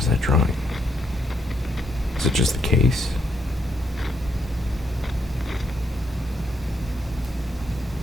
is that drawing? Is it just the case?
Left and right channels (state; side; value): normal; both; correlation 0.77